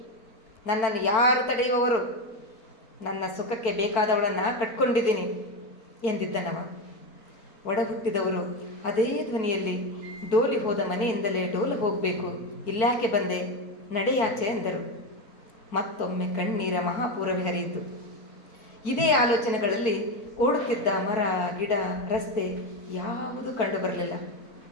ನನ್ನನ್ನು ಯಾರು ತಡೆಯುವವರು? ನನ್ನ ಸುಖಕ್ಕೆ ಬೇಕಾದವಳನ್ನು ಕಟ್ಕೊಂಡಿದ್ದೀನಿ ಎಂದಿದ್ದನವ. ಒಡ ಹುಟ್ಟಿದವರು ಅದೇ ಧ್ವನಿಯಲ್ಲಿ ಡೋಲಿ ಹೋದ ಮನೆಯಿಂದಲೇ ಡೋಲು ಹೋಗಬೇಕು, ಇಲ್ಯಾಕೆ ಬಂದೆ, ನಡೆಯಾಚೆ ಎಂದರು. ಮತ್ತೊಮ್ಮೆ ಕಣ್ಣೀರ ಮಹಾಪೂರವೇ ಹರಿಯಿತು. ಇದೇ ಆಲೋಚನೆಗಳಲ್ಲಿ ಓಡುತ್ತಿದ್ದ ಮರ, ಗಿಡ, ರಸ್ತೆ ಯಾವುದೂ ಕಂಡುಬರಲಿಲ್ಲ.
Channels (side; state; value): right; late; 4.5 ms